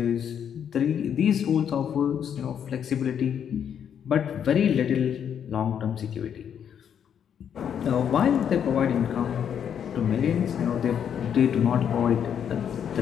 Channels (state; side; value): quieter; right; 8.5 dB